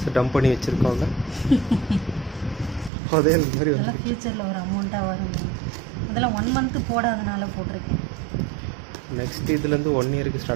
டம்ப் பண்ணி வச்சுருக்கோங்க. அதே மாதிரி அதெல்லாம் ஃப்யூச்சரில் ஒரு அமௌண்ட்டாக வரும். அதெல்லாம் 1 month போடாதனால போட்டிருக்கேன். நெக்ஸ்ட் இதுலேருந்து 1 yearக்கு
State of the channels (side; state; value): left; drops out; at 2.9 s